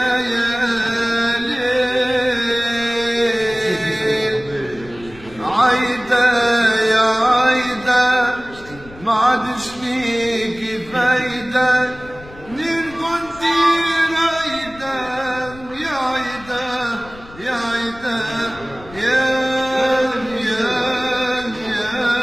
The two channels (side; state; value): left; noise; rumble, 20 dB below the sound